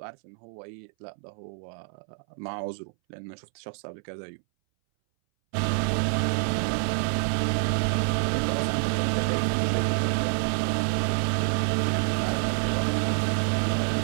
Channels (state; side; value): silent; left; 60 dB below the other